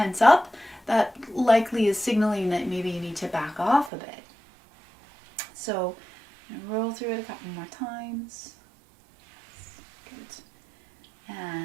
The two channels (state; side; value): drops out; left; at 3.9 s